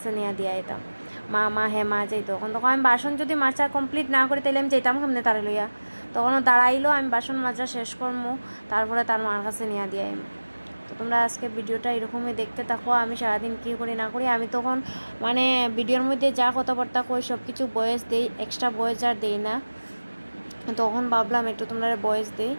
নিয়ে দিয়ে আইতাম, মা যাইতো। তখন আমি বাসন যদি মাজা কমপ্লিট না করি তাহলে আমি যেতাম সামনে তারে লইয়া। তখনও দাঁড়াইলো, আমি বাসন মাজা শেষ করবো, তারপরে তার মার কাছে নিয়ে দিয়ে আইম। তো তোমরা আজকে ভিডিওটা এরকমই দেখতে থাকো, আমি সারাদিন কী করি না করি। আমি তখন মানে ভিডিওর মধ্যে যা কথাবার্তা কই সব কিছু ভয়েস দেই, এক্সট্রা ভয়েস আর দেই না। তখন ভাবলাম একটু তোমরা ভয়েস দেই,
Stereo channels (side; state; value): both; inverted; correlation -1.00